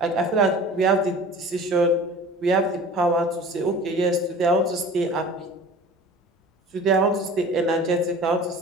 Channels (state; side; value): normal; both; correlation 0.41